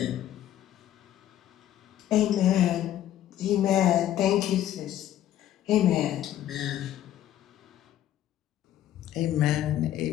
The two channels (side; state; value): right; quieter; 12.1 dB